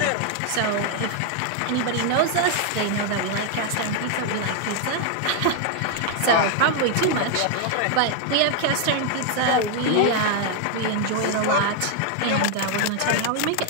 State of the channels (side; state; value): both; different; correlation 0.00